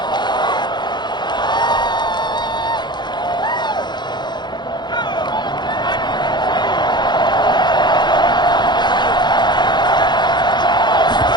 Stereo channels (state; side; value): late; right; 0.21 ms